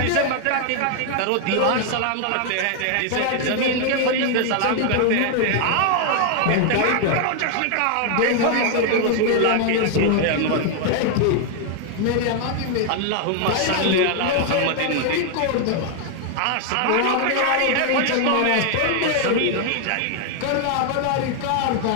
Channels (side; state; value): both; different; correlation 0.00